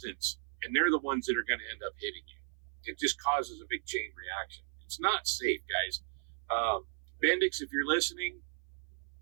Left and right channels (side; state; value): left; silent; 54 dB below the other